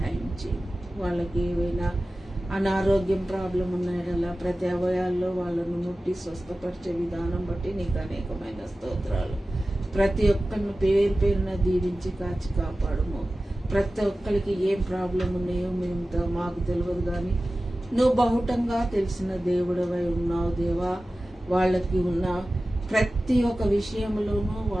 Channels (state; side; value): normal; both; correlation 0.95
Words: చేయి. వాళ్ళకి ఏవైనా అనారోగ్యం ప్రాబ్లం ఉన్నాయడలా ప్రతి అవయాల్లో వాళ్ళను ముట్టి స్వస్థపరిచే విధానం బట్టి నీకు అనేకమైన స్తోత్రాలు. ప్రతి ఒక్కరిని పేరు పేరున దీవించి కాచి కాపాడుము. ప్రతి ఒక్కరికి ఏం ప్రాబ్లం ఉన్నాయో మేము మాకు తెలియదు, కానీ నువ్వు బహుటంగా తెలిసిన దేవుడవై ఉన్నావు దేవా. వాళ్ళకి ఉన్న ప్రతి ఒక్క విషయంలోనూ